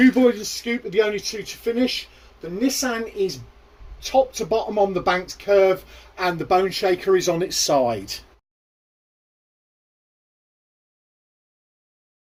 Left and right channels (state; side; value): identical; both; correlation 1.00